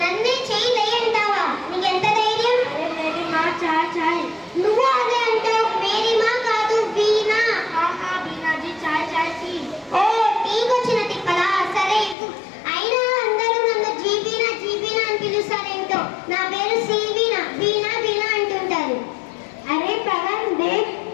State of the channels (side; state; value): right; drops out; at 12.2 s